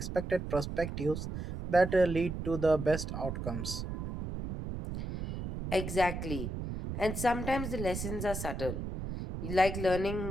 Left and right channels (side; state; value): right; noise; rumble, 5 dB below the sound